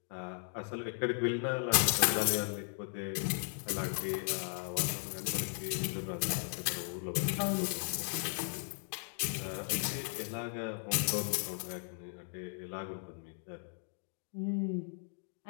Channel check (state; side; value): silent; right; 54 dB below the other